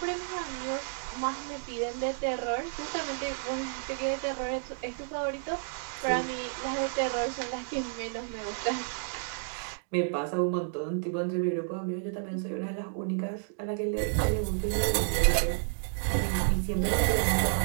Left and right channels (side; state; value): left; silent; digital silence